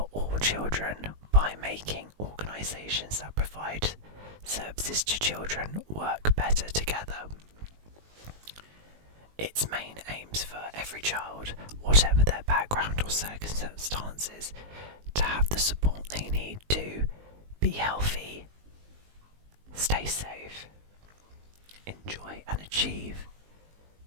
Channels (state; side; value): late; left; 19 ms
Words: all children by making organisations that provide services to children work better together. Its main aims for every child, whatever their background or circumstances, to have the support they need to be healthy, stay safe, enjoy and achieve,